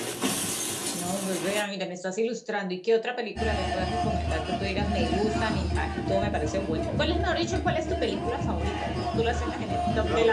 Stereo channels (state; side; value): identical; both; correlation 1.00